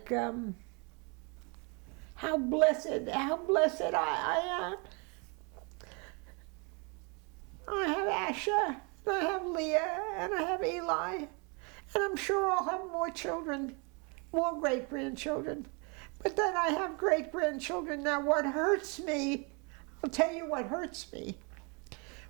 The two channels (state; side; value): quieter; left; 32.7 dB